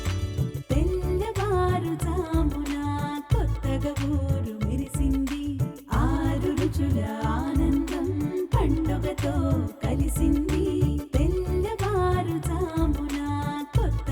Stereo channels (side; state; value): both; identical; correlation 1.00